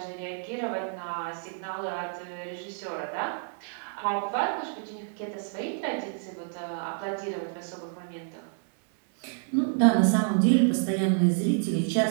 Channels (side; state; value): left; silent; 59 dB below the other